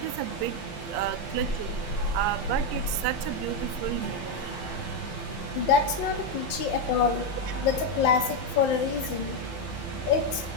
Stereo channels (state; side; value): late; right; 5.7 ms